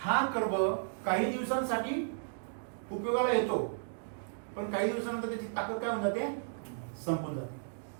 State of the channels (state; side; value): silent; left; digital silence